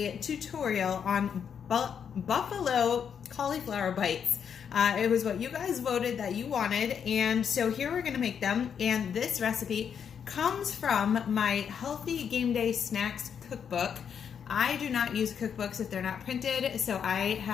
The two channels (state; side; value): quieter; right; 7.6 dB